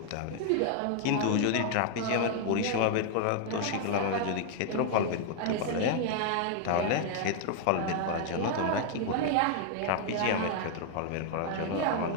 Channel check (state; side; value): different; both; correlation 0.00